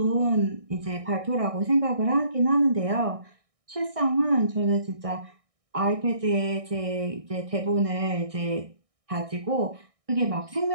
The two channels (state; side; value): late; left; 1.6 ms